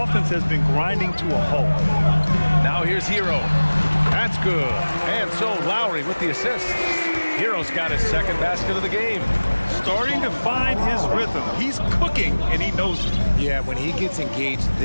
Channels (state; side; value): inverted; both; correlation -1.00